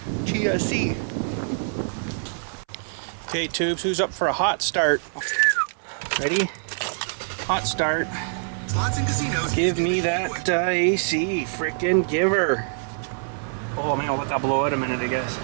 Okay, tubes, who's up for a hot start? Ready? Hot start. Slots and casinos. Give me that AC, frickin' give her. Oh man, I'll let that blow out a minute, I guess.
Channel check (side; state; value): left; silent; 60 dB below the other